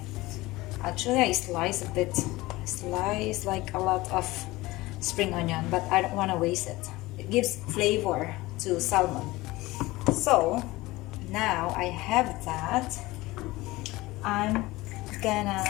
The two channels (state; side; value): quieter; right; 19.8 dB